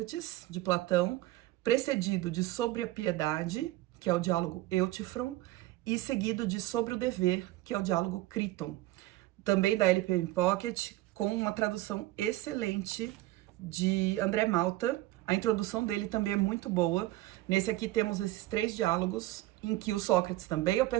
de Platão, precedido de Sobre a Piedade, que é o diálogo Eutífron, e seguido de Sobre o Dever, que é o diálogo Críton. Também da LPM Pocket, com uma tradução excelente de André Malta. A introdução dele também é muito boa. Nesse aqui temos esses três diálogos, em que o Sócrates também é o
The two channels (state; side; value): quieter; left; 16.9 dB